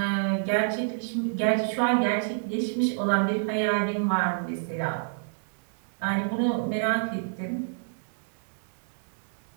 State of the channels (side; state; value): left; silent; digital silence